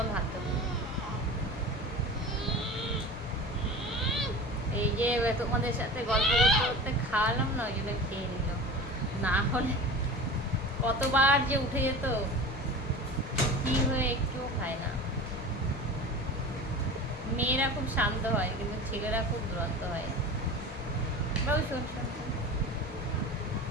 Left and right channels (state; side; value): normal; both; correlation 0.34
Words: আমি ভাত দেবো। এই যে তোমাদের সাথে গল্প করতে করতে খাওয়ালাম না, ওই জন্য খেয়ে নিল, না হলে কতবার যে উঠে যেত, কি হয়ে একটুও খায় না। মেয়েরা খুব শান্ত হয় কিন্তু ছেলেরা খুব দুরন্ত হয়। বাবু শোন শোন শোন।